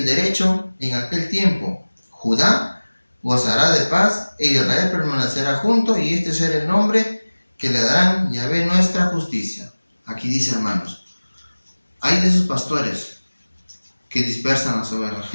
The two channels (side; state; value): both; inverted; correlation -1.00